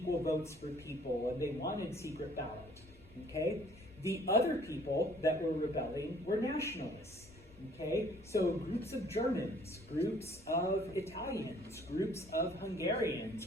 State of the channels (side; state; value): both; normal; correlation 0.58